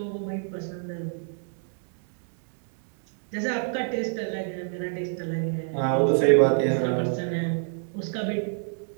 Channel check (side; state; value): left; silent; 60 dB below the other